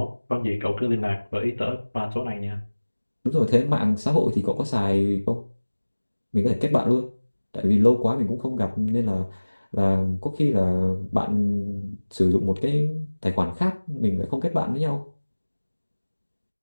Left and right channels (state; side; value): inverted; both; correlation -1.00